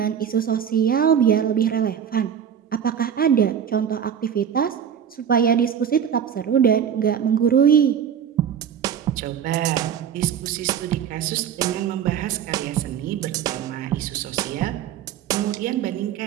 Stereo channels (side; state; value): left; quieter; 8.5 dB